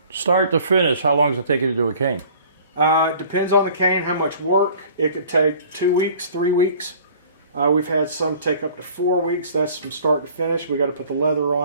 Start to finish, how long does it take you to do a cane? It depends on the cane, how much work. It could take 2 weeks, 3 weeks. We've had some take up to 4 weeks. That's from start to finish. We got to put the leather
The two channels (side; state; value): both; inverted; correlation -0.50